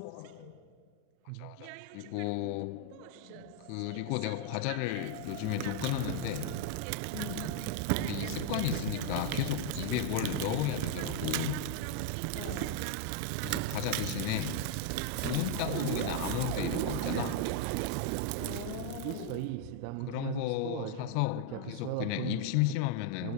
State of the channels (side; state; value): both; different; correlation 0.00